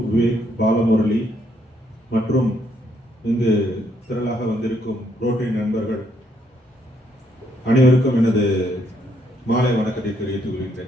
Vivek, Balamurali மற்றும் இங்கு திரளாக வந்திருக்கும் ரோட்டரி நண்பர்கள் அனைவருக்கும் எனது மாலை வணக்கத்தை தெரிவித்துக்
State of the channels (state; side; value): normal; both; correlation 0.72